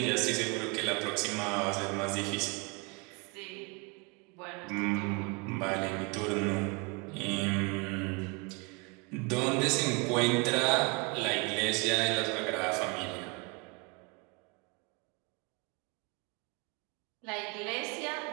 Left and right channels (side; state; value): left; quieter; 30.2 dB